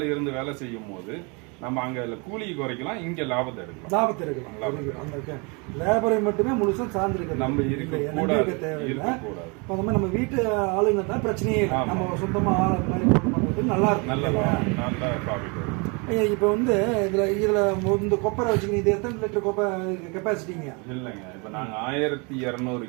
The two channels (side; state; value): left; quieter; 31.2 dB